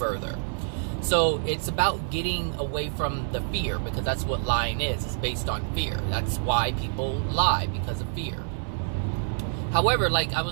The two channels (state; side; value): silent; left; 60 dB below the other